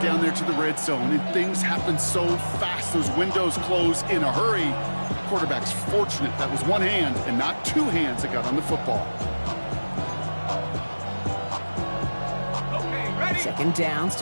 down there to the red zone, and things happen so fast. Those windows close in a hurry. The quarterback's fortunate that was one hand and not two hands that got on the football. Okay, ready? Second down,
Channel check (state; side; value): inverted; both; correlation -1.00